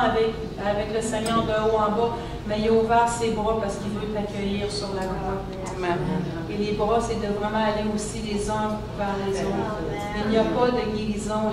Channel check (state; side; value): identical; both; correlation 1.00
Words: le Seigneur de haut en bas, mais il a ouvert ses bras parce qu'il veut t'accueillir sur la croix. Amen. Et les bras, c'est de vraiment aller aussi les uns vers les autres. Il n'y a pas de guérison.